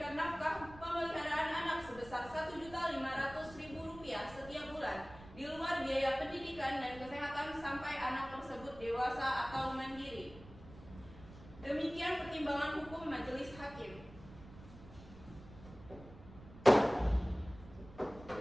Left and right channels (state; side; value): noise; right; rumble, 18 dB below the sound